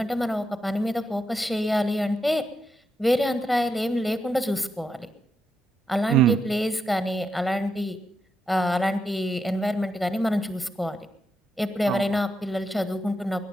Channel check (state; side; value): normal; both; correlation 0.83